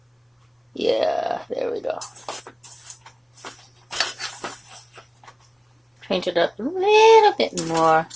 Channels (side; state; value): both; identical; correlation 1.00